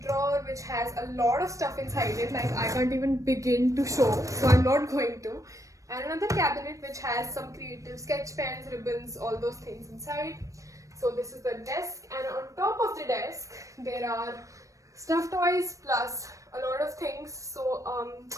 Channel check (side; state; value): left; late; 0.16 ms